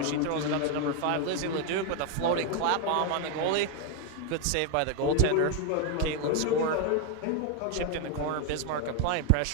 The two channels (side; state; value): both; different; correlation 0.01